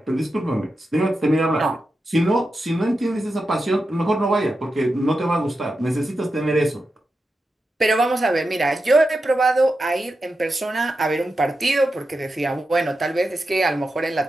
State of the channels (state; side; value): normal; both; correlation 0.89